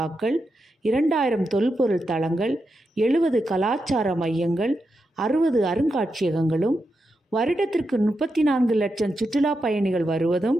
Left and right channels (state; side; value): normal; both; correlation 0.87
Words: 2000 தொல்பொருள் தளங்கள், 70 கலாச்சார மையங்கள், 60 அருங்காட்சியகங்களும், வருடத்திற்கு 34 லட்சம் சுற்றுலா பயணிகள் வருவதும்,